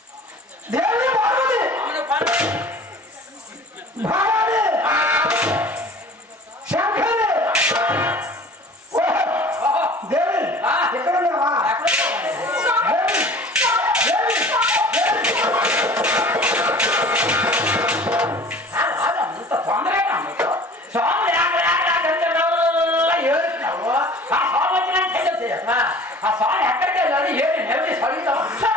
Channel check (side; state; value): both; normal; correlation 0.44